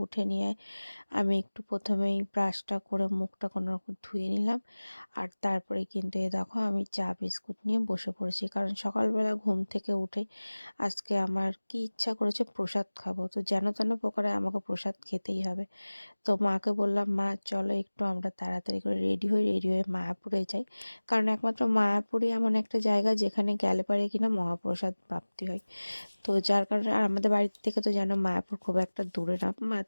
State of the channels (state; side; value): inverted; both; correlation -1.00